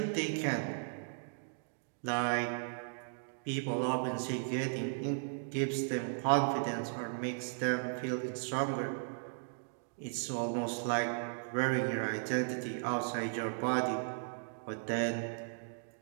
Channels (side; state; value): left; silent; digital silence